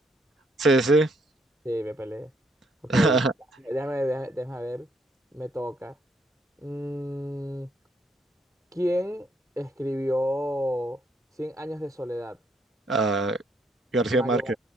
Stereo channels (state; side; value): normal; both; correlation 0.71